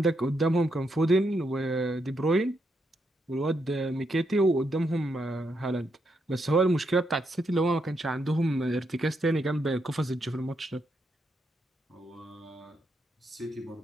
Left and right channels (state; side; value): normal; both; correlation 0.80